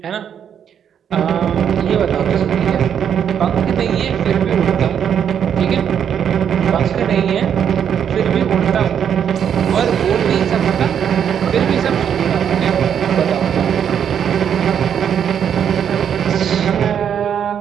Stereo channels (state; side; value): quieter; left; 8.5 dB